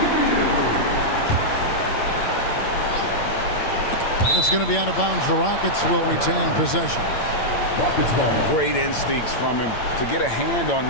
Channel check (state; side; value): late; right; 8.8 ms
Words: It's going to be out of bounds. The Rockets will retain possession. Great instincts from him to get a hand on